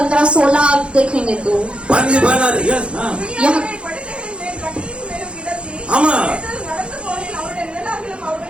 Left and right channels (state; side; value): late; left; 0.058 ms